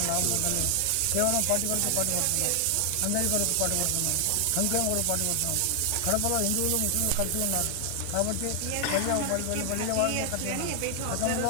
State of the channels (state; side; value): different; both; correlation 0.00